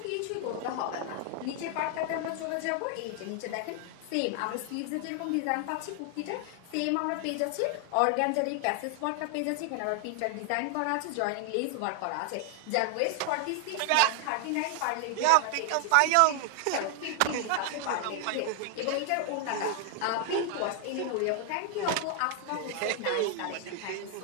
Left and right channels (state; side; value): different; both; correlation 0.00